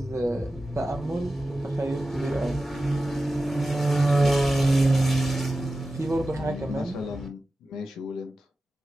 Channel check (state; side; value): normal; both; correlation 0.94